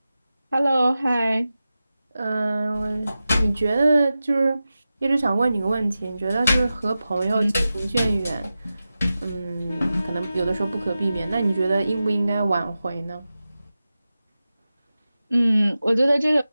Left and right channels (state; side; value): inverted; both; correlation -0.94